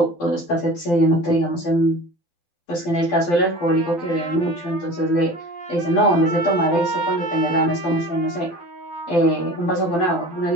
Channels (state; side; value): late; right; 12 ms